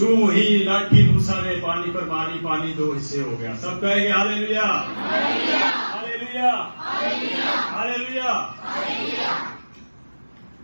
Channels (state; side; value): inverted; both; correlation -1.00